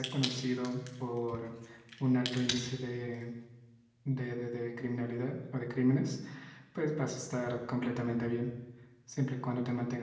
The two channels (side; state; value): both; identical; correlation 1.00